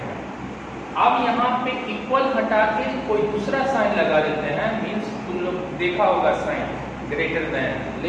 है। अब यहाँ पे इक्वल हटा के कोई दूसरा साइन लगा देते हैं, मीन्स तुम लोग देखा होगा sign greater than,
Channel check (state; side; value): identical; both; correlation 1.00